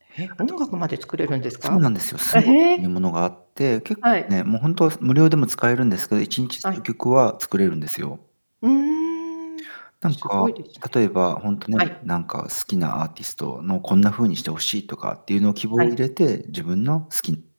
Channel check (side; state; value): both; inverted; correlation -1.00